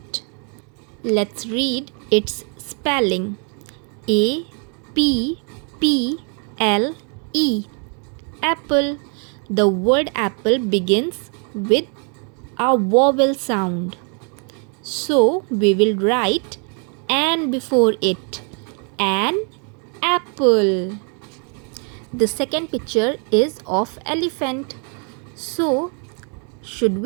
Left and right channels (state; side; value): quieter; left; 39.0 dB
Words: Let's read its spelling. A P P L E, apple. The word apple begins with a vowel sound. So we will write an before it. An apple. The second picture is of elephant. So should